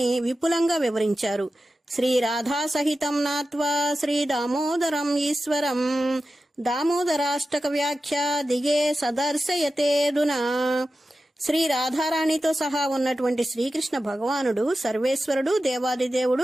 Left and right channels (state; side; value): normal; both; correlation 0.93